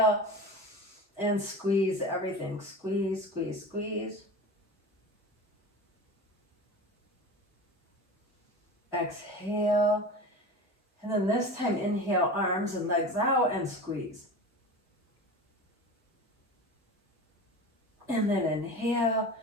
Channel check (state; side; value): normal; both; correlation 0.32